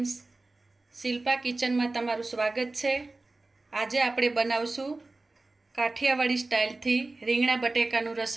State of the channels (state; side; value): quieter; left; 3.2 dB